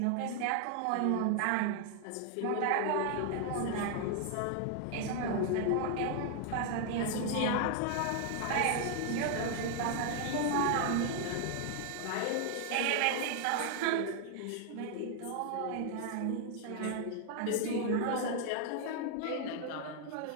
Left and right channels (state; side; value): different; both; correlation 0.00